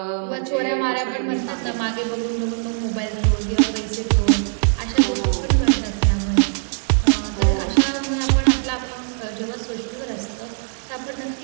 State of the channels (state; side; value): silent; left; 60 dB below the other